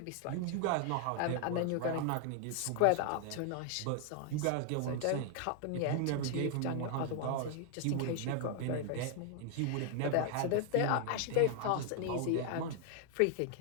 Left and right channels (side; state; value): both; different; correlation 0.00